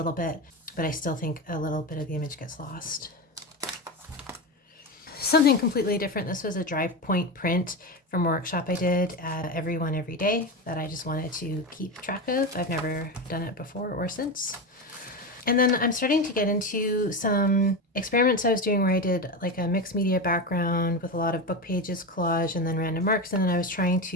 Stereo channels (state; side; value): normal; both; correlation 0.18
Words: bit, but I still think a little bit of the image gets lost. Something completely different. This was a dry point print from a workshop I did at Everyone Every Day that I just wanted to keep track of. I've never done it before or since. And then I'm starting to get into some experiments I was doing where I did like a mixed media background with a lot of book pages, collage, and then random marks. And then I was trying